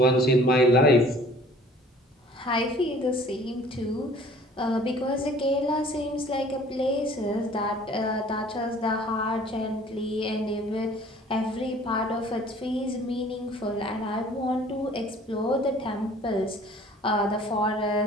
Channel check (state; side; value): normal; both; correlation 0.51